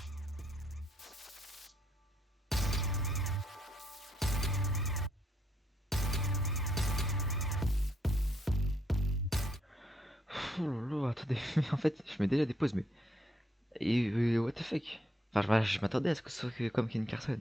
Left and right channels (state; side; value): normal; both; correlation 0.74